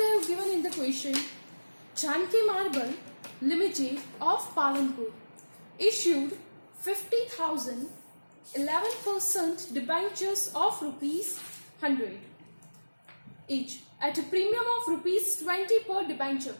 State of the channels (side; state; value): both; inverted; correlation -1.00